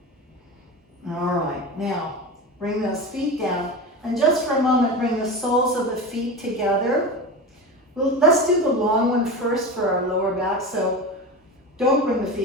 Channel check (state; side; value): normal; both; correlation 0.26